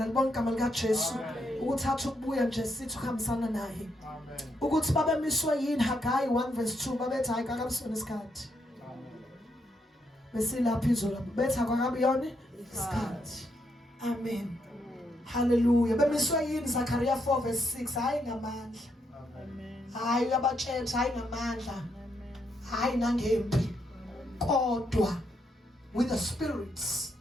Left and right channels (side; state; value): both; normal; correlation 0.78